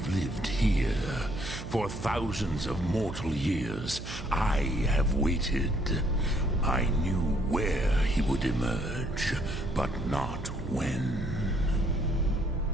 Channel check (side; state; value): right; noise; hum, 10 dB below the sound